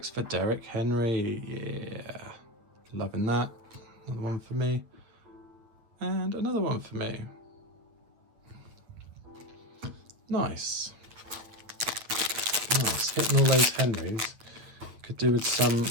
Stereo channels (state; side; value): late; left; 9.2 ms